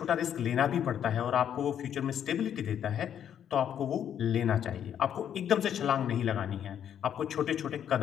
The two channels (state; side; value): quieter; right; 9.4 dB